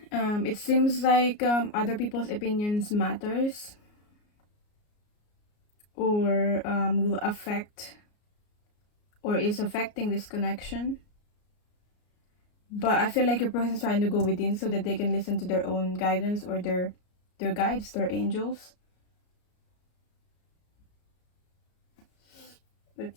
it seems like other people's opinions matters, or will affect, or is affecting this connection. But I feel like your person is trying to go within so that they can listen to their own guidance, or their guides, their angels.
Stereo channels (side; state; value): right; late; 33 ms